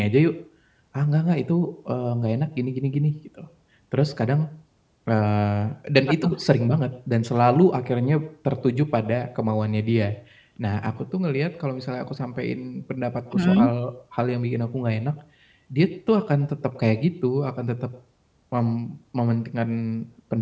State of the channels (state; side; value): identical; both; correlation 1.00